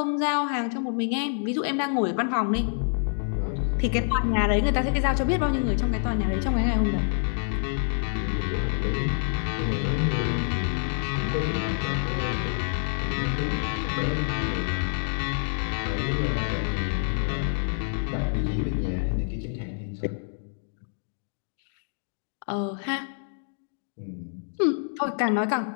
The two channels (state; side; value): silent; right; digital silence